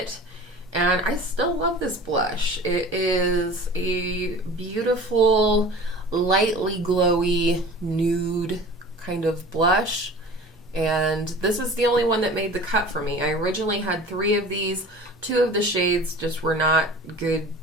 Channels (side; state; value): both; normal; correlation 0.41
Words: and I still love this blush. It is a beautiful, lightly glowy nude kind of blush. And this is the only one that made the cut for me. I originally had 3 of these. 2 of the shades just were not good